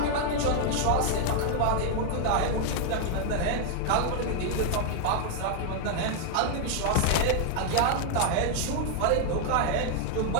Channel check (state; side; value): different; both; correlation 0.00